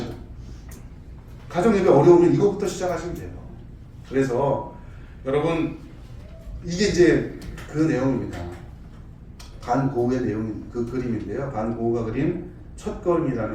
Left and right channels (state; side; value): identical; both; correlation 1.00